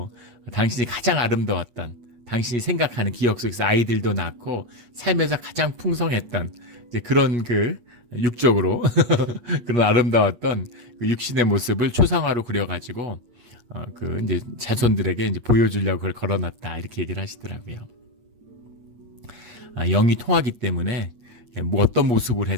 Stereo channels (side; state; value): left; late; 8.4 ms